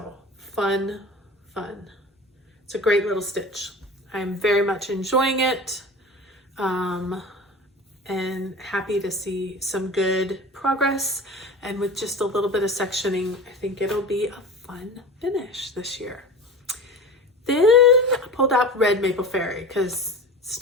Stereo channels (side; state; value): both; normal; correlation 0.34